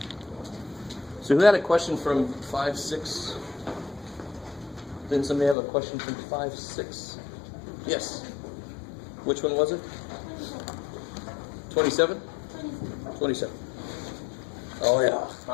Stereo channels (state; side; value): drops out; right; at 5.6 s